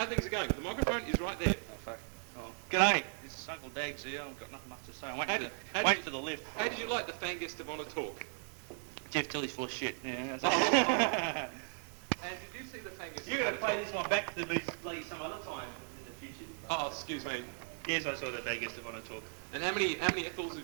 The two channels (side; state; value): left; silent; 53 dB below the other